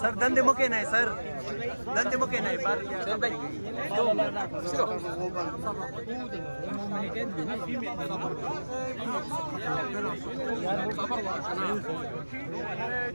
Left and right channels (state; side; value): inverted; both; correlation -1.00